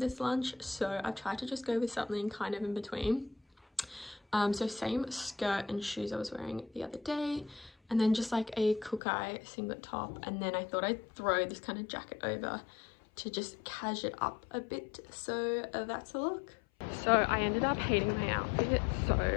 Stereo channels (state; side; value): drops out; right; at 9.0 s